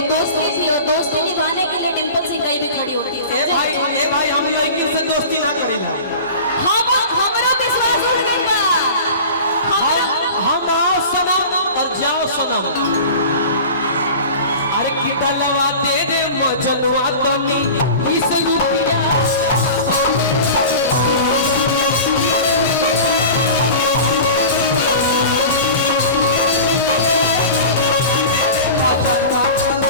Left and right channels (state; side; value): inverted; both; correlation -0.36